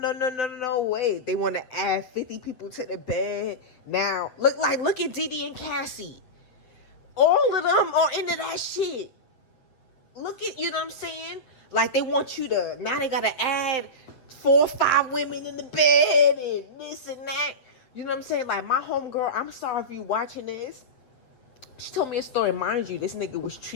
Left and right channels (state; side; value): late; right; 7.9 ms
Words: way. They want to add 50 people to the bed. Now, look at Didi and Cassie. All of them are into that shit. Look at, you know what I'm saying? Like, they want you to, now they got to add 4 or 5 women in the bed and this and that. You know what I'm saying? Like, my homegirl, I'm sorry if you watching this, She told me a story. Mind you, this nigga was